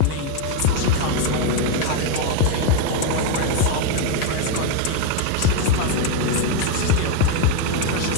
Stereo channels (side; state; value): both; different; correlation 0.02